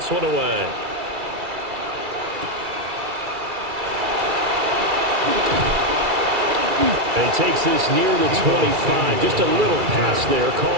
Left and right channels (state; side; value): late; left; 2.3 ms